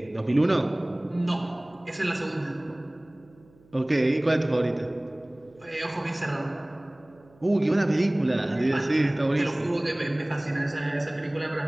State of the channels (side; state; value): right; noise; hum, 29 dB below the sound